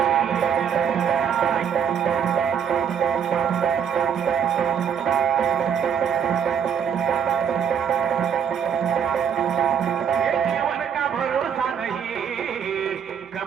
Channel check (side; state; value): left; quieter; 7.9 dB